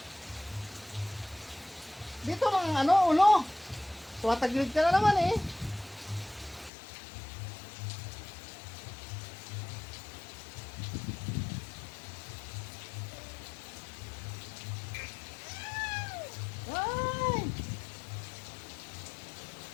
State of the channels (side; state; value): right; drops out; at 6.7 s